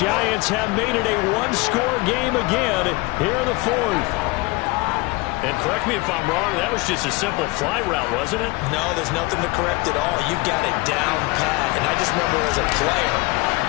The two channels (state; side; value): quieter; right; 24.1 dB